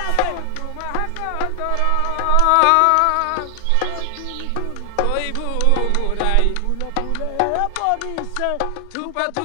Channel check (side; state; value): both; different; correlation 0.00